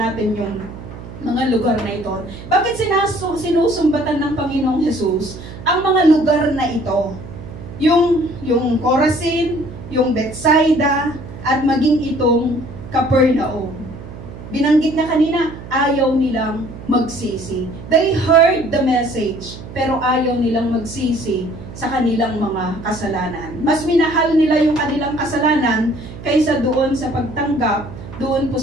yung mga lugar na ito. Bakit sinusumbatan ng Panginoong Jesus ang mga lugar na ito? Yung Corazin, yung Bethsaida, at maging itong Capernaum. Binanggit na kanina, ayaw nilang magsisi. They heard the message, pero ayaw nilang magsisi sa kanilang mga kasalanan. Mas minahal nila yung kanilang kasalanan kaysa doon sa pagtanggap, doon po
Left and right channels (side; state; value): right; noise; hum, 13 dB below the sound